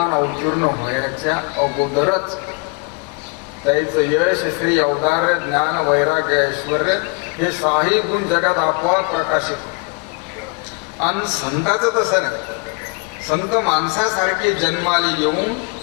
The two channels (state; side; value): quieter; right; 32.1 dB